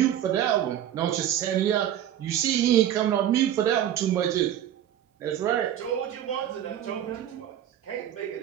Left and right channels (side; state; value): left; quieter; 11.0 dB